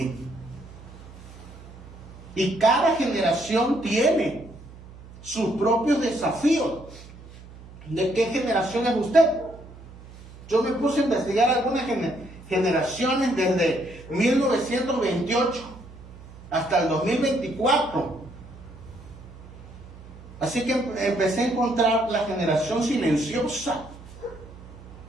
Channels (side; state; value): right; noise; hum, 18 dB below the sound